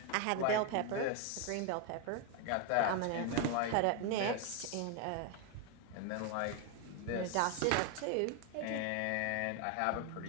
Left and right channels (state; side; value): different; both; correlation 0.01